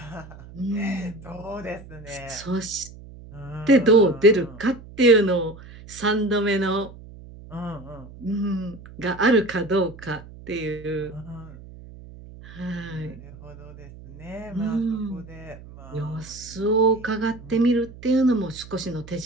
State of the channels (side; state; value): right; noise; hum, 17 dB below the sound